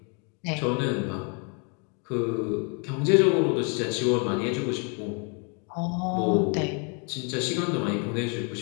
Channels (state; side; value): quieter; right; 35.8 dB